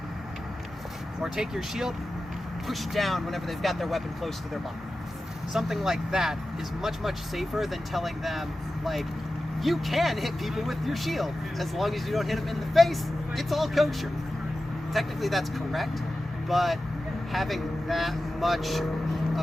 Or take your shield, push down whenever they've got their weapon close to their body. Something like that is much, much safer than telling them, like, you can hit people with your shield. As long as you don't hit them in the face, it's all kosher. Technically that's correct, but having that much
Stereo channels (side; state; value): both; normal; correlation 0.94